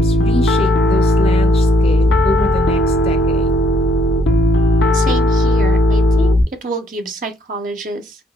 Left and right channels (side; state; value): both; normal; correlation 0.69